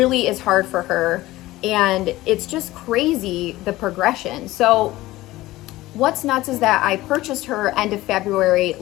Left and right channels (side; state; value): right; quieter; 17.5 dB